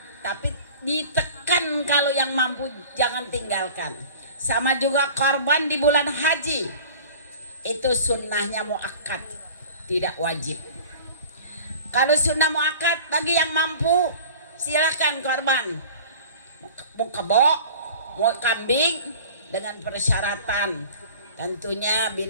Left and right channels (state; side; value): inverted; both; correlation -0.42